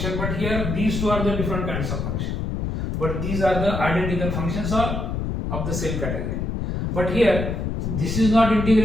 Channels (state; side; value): noise; left; rumble, 2 dB below the sound